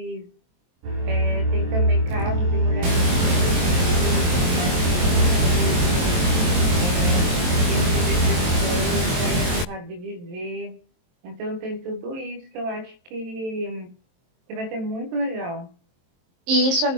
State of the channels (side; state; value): left; late; 23 ms